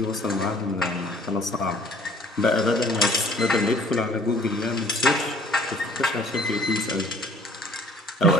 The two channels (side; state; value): both; normal; correlation 0.55